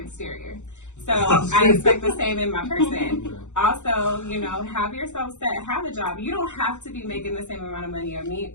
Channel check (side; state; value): right; late; 0.84 ms